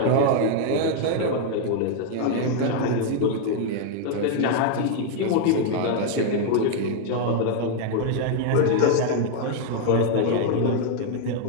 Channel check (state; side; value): different; both; correlation 0.00